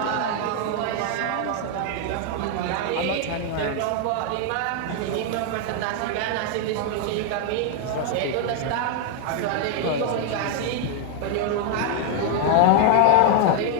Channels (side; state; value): both; different; correlation 0.00